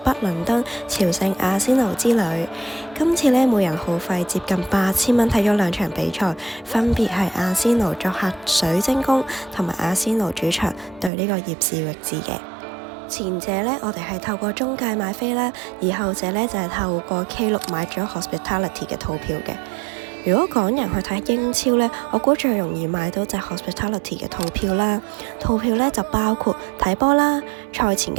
倫敦朝聖阿仙奴之旅。今次呢，每人耗費接近8000蚊睇咗兩場比賽，分別係阿仙奴作客水晶宮同埋阿仙奴主場對呢個葉士域治嘅。前者呢，我哋係透過中介買飛啦，而後者呢，就係透過 K6 買咗 Hospitality 嘅套票嘅。如果港人去睇英超呢，我估最容易買到就係 Hospitality 嘅套票啦。套票呢就包括睇波啦、賽前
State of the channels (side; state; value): left; drops out; at 11.1 s